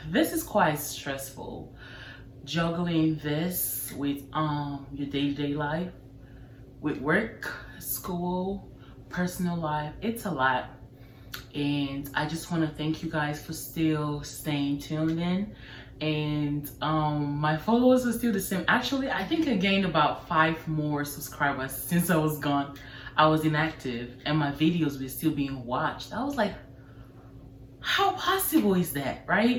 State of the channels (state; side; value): identical; both; correlation 1.00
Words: This is quite stressful. Juggling this with your day-to-day life, with work, school, personal life. It's a lot. And I just want to thank you guys for still staying tuned in. And my followers are still the same. Actually, I think I gained about 5 more subscribers since I was gone. I was inactive and my videos were still being watched. I was like, how possible is that,